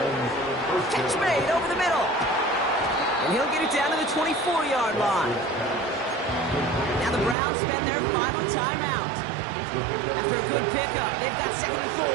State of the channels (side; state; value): left; drops out; at 7.4 s